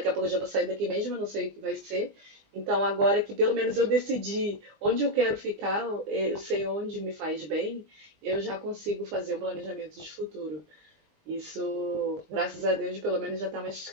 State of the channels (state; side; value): late; left; 20 ms